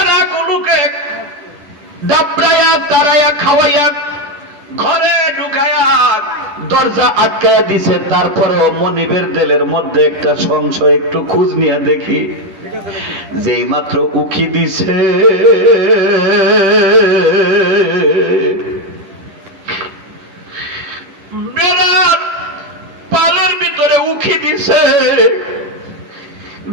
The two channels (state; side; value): late; left; 10 ms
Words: ডাবড়াইয়া তারাইয়া খাওয়াইয়া ঘরে ঢুকাইয়া দরজা আটকাইয়া দিছে। তারপরেও মনিবের দিলের মধ্যে একটা সংশয়, একটু খোঁজ নিয়ে দেখি। যেই মাত্র উকি দিছে, বেড়ার পালের ভিতরে উকি দিছে,